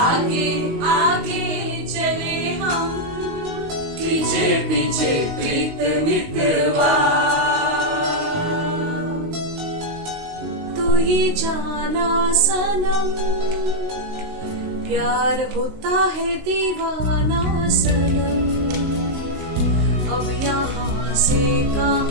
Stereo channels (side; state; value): left; late; 19 ms